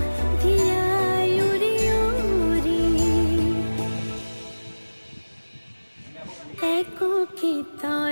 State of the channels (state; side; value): inverted; both; correlation -1.00